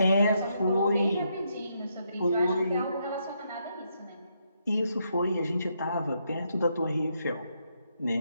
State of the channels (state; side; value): inverted; both; correlation -0.78